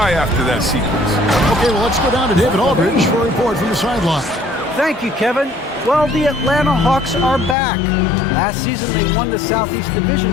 after that sequence. Okay, well, let's go down to David Aldridge for a report from the sideline. Thank you, Kevin. Well, the Atlanta Hawks are back. Last season, they won the Southeast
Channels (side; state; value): right; drops out; at 7.6 s